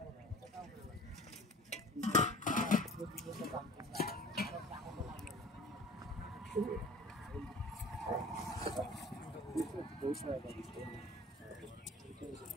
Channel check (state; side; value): normal; both; correlation 0.43